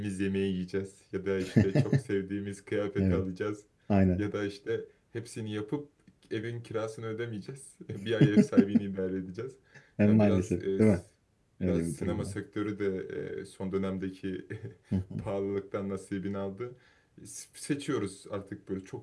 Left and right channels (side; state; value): both; identical; correlation 1.00